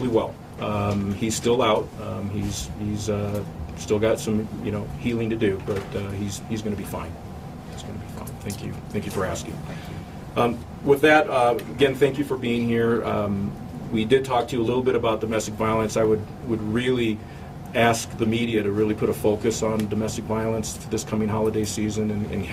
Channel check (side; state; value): both; identical; correlation 1.00